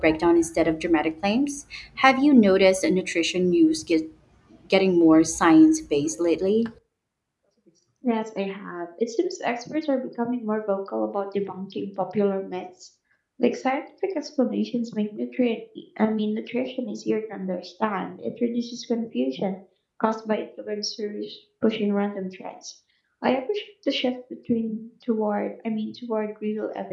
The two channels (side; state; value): both; identical; correlation 1.00